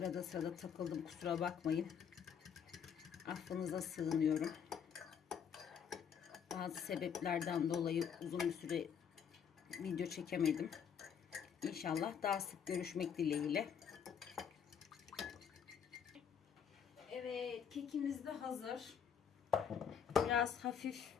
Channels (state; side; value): quieter; right; 7.7 dB